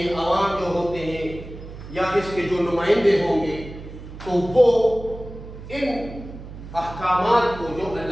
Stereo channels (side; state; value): right; noise; hum, 13 dB below the sound